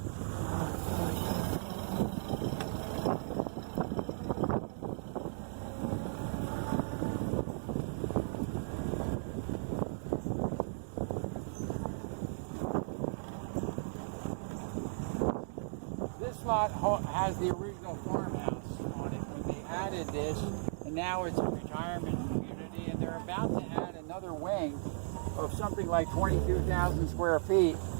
This lot has the original farmhouse on it when they added this, and now it's a retirement community, and they're about to add another wing of something like 22,000 square feet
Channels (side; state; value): left; silent; digital silence